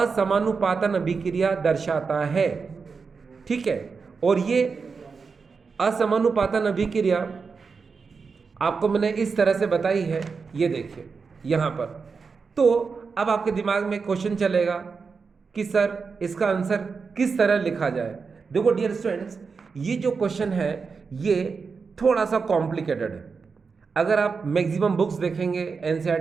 अभिक्रिया दर्शाता है, ठीक है। और ये असमानुपातन अभिक्रिया आपको मैंने इस तरह से बताई है, ये देखिए यहाँ पर। तो अब आपके दिमाग में क्वेश्चन चलेगा कि सर इसका आंसर किस तरह लिखा जाए। देखो डियर स्टूडेंट्स, ये जो क्वेश्चन है ये थोड़ा सा कॉम्प्लिकेटेड है। अगर आप मैक्सिमम बुक्स देखेंगे,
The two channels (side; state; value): left; quieter; 5.1 dB